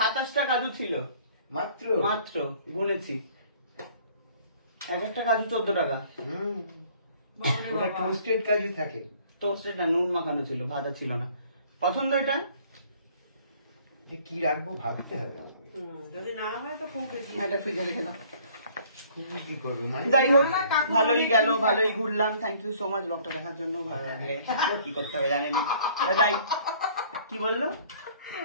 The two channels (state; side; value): inverted; both; correlation -0.56